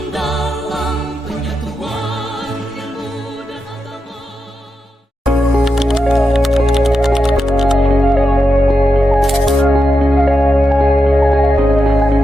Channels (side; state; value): both; normal; correlation 0.88